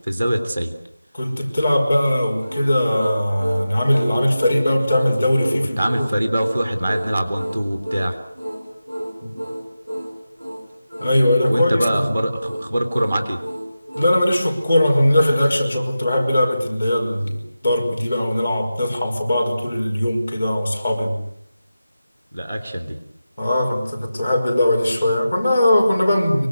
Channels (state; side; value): inverted; both; correlation -0.92